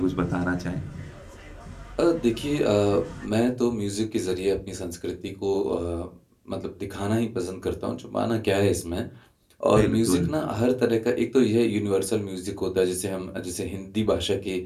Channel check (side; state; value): both; identical; correlation 1.00